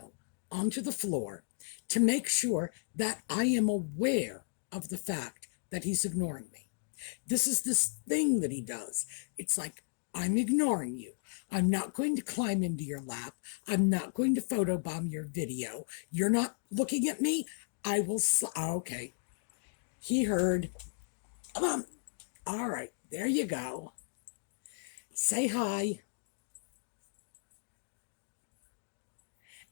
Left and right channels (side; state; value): right; silent; digital silence